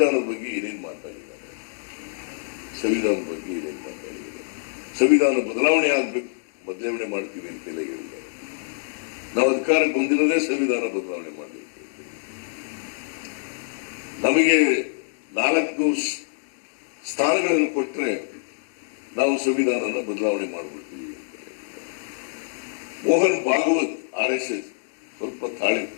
ಬಗ್ಗೆ ಏನೇನು ಮಾತಾಡಿದ್ದಾರೆ, ಸಂವಿಧಾನ ಬದಲಾವಣೆ ಆಗ್ಬೇಕು, ಬದಲಾವಣೆ ಮಾಡ್ತೀವಿ ಅಂತೆಲ್ಲ ಹೇಳಿದ್ದಾರೆ. ನಾವು ಅಧಿಕಾರಕ್ಕೆ ಬಂದಿರೋದೇ ಸಂವಿಧಾನ ಬದಲಾವಣೆ ಮಾಡಬೇಕು. ನಮಗೆ 4 ಸ್ಥಾನಗಳನ್ನು ಕೊಟ್ಟರೆ ನಾವು ಸಂವಿಧಾನನ ಬದಲಾವಣೆ ಮಾಡಿಬಿಡ್ತೀವಿ ಅಂತ. ಮೋಹನ್ ಭಾಗವತ್ RSS ಸ್ವಲ್ಪ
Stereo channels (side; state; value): right; silent; digital silence